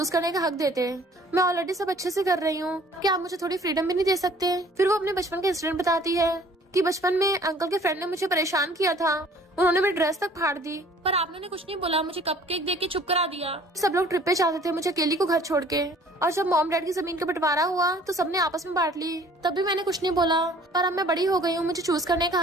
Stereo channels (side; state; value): both; normal; correlation 0.53